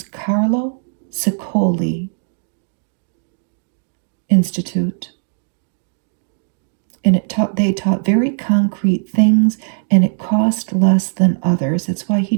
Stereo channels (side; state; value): left; silent; digital silence